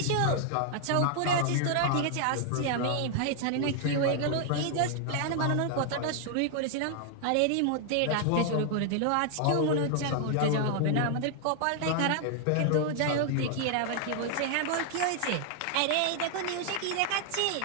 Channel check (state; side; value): different; both; correlation 0.00